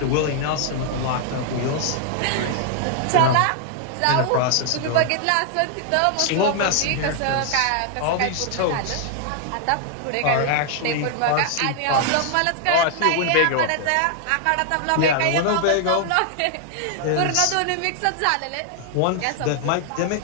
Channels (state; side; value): different; both; correlation 0.00